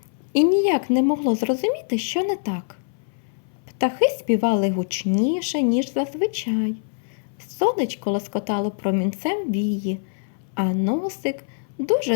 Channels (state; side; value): silent; right; 59 dB below the other